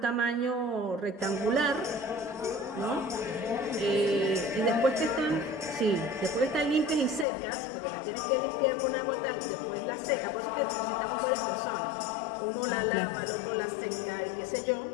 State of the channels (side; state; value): right; drops out; at 7.2 s